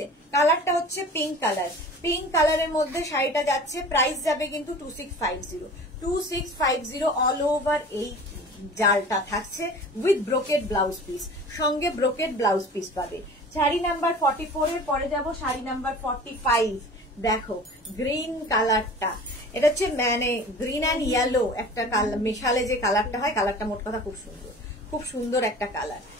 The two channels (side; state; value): both; normal; correlation 0.41